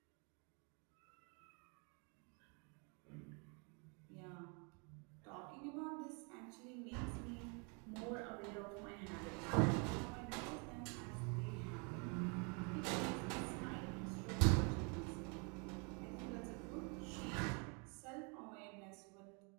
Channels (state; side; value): quieter; left; 34.7 dB